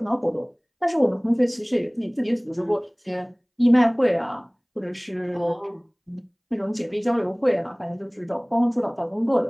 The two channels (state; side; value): identical; both; correlation 1.00